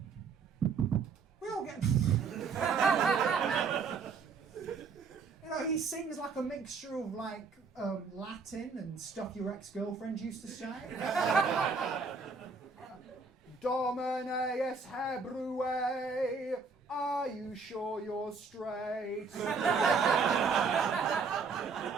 We all get. He sings like a mixture of Latin and stuff your ex-girlfriend used to say. Domine es Hebrue, are you sure you're straight?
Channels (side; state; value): left; quieter; 4.9 dB